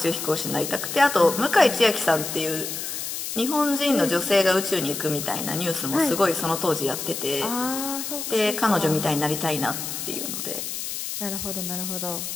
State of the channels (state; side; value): noise; left; hiss, 5 dB below the sound